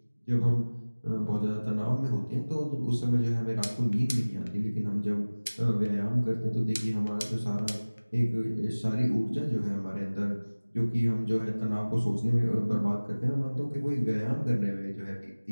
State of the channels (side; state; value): both; inverted; correlation -1.00